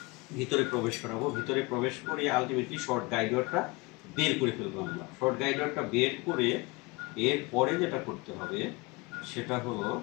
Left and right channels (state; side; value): quieter; right; 25.4 dB